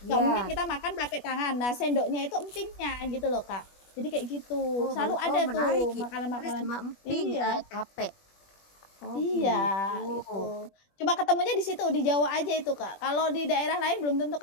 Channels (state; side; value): late; right; 21 ms